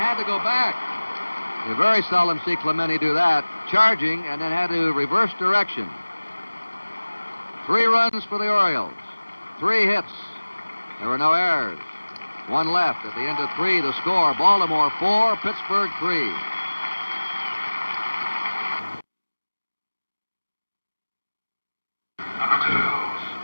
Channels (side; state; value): both; inverted; correlation -1.00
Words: to go back. You very seldom see Clemente do that. Charging and then had to reverse direction. 3 runs for the Orioles. 3 hits. There were no errors. 1 left. At the end of 3, the score, Baltimore 4, Pittsburgh 3.